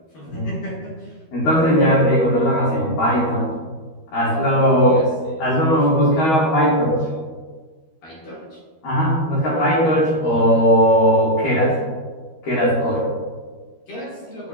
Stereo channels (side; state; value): right; late; 13 ms